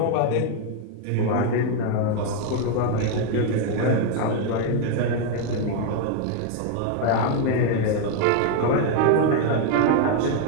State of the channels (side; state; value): both; different; correlation 0.01